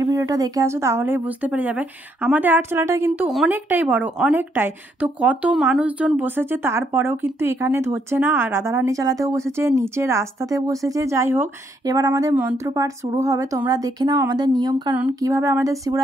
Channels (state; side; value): normal; both; correlation 0.73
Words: ভিডিওটা দেখে আসো, তাহলেই বুঝতে পেরে যাবে। আমাদের আটচালাটা কিন্তু অনেকটাই বড়, অনেকটাই। তো কত মানুষজন বসেছে, তারপরেও কিন্তু এখানে ধরছে না। আর রাধারানী চালাতেও বসেছে, নিচে রাস্তাতে বসেছে। যাই হোক, এবার আমাদের মন্ত্রপাঠ শুরু হবে। তোমরা দেখে নাও আমাদের নিয়ম কানুন, কিভাবে আমাদের